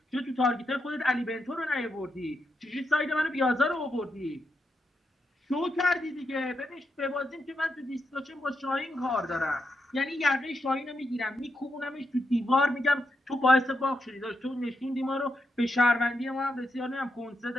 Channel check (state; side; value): normal; both; correlation 0.84